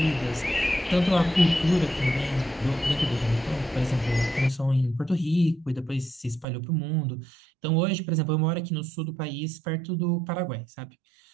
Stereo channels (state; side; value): drops out; left; at 6.5 s